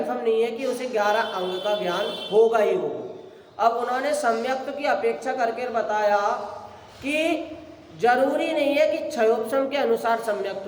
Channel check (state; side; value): identical; both; correlation 1.00